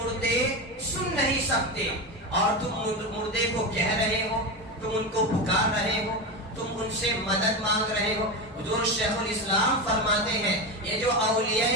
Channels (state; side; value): normal; both; correlation 0.18